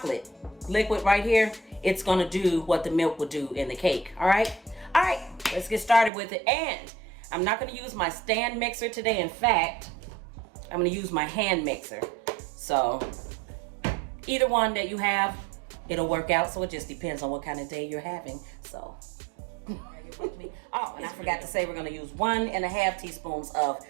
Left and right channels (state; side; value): drops out; left; at 6.1 s